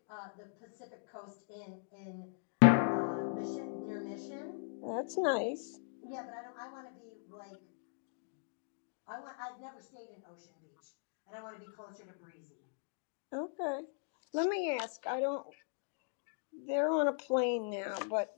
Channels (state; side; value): silent; right; digital silence